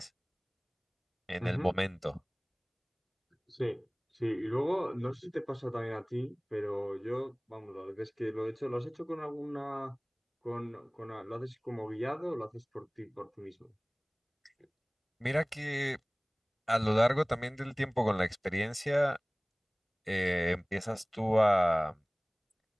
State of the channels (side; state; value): both; identical; correlation 1.00